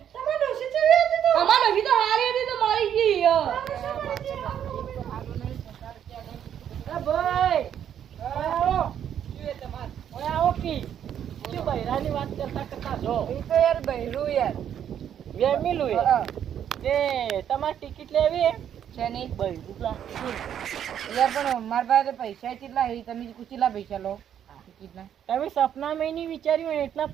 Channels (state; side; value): quieter; left; 9.5 dB